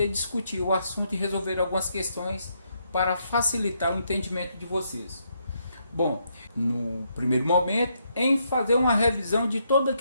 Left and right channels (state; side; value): inverted; both; correlation -0.76